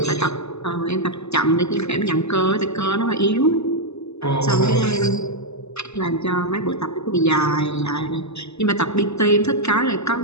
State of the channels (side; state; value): right; late; 0.80 ms